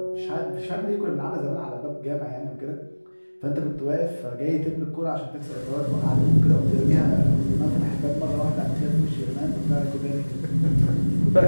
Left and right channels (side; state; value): both; inverted; correlation -1.00